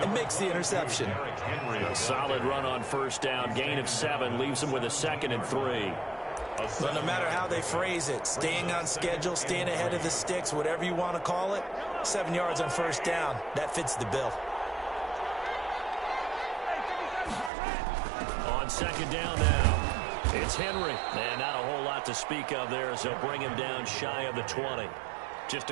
and makes the interception. A solid run on first down. Gain of 7 leaves him with a 2nd and 3. But no matter how they phrase it, staying on schedule, staying ahead of the sticks, whatever you want to call it, 7 yards on first down, that fits the bill. On second down now, it's Henry. And not a whole lot to speak of there as they'll bring him down shy of the 20. Just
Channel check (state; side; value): drops out; left; at 17.5 s